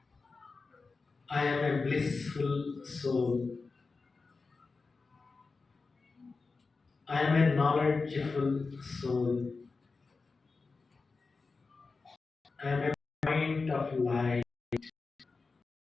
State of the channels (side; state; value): right; quieter; 4.2 dB